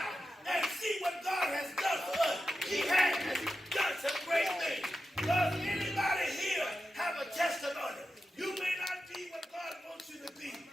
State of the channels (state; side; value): normal; both; correlation 0.90